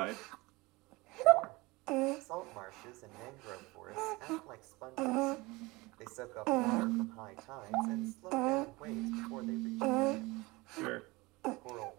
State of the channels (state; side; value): quieter; left; 22.9 dB